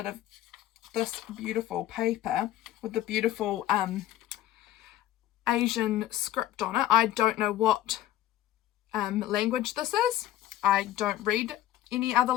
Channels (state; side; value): quieter; right; 13.5 dB